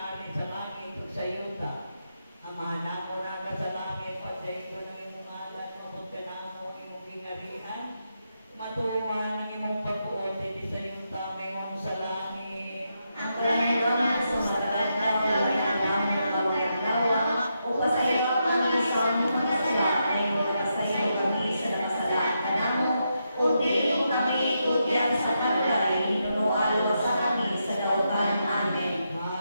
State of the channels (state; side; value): inverted; both; correlation -0.83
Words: sa langit ug sa yuta. Amahan mo na ka sa langit, pagdaito ng imong ngalan, mabot ka na mo imong gingarihan, matuwa ng imong pagkuot, hindi sa yuta, may mo sa langit. Ang kalangit sa matagad na wala na namin na kawaglawa, upasayaw kami sa among mga sala, ay upasayaw kami sa nakasalaan namo, o di kami ikutyan sa kalay, nunualo sa kami sa dautan. Amen.